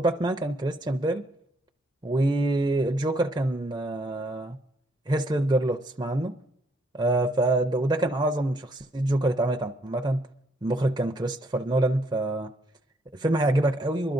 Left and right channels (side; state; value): both; normal; correlation 0.70